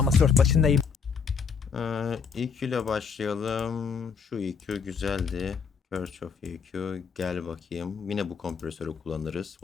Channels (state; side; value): quieter; right; 6.1 dB